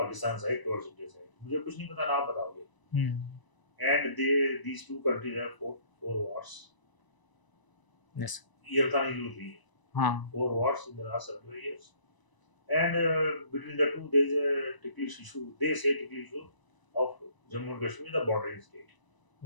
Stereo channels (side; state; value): right; late; 1.0 ms